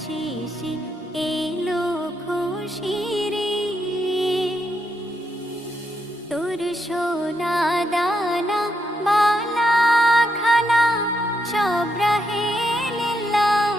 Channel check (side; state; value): both; normal; correlation 0.80